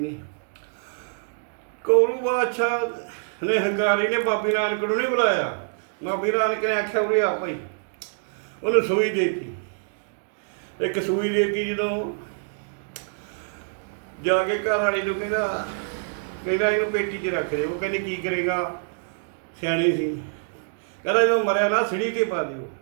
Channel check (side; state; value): left; silent; digital silence